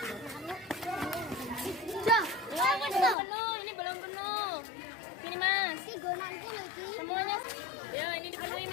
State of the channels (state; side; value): drops out; right; at 3.2 s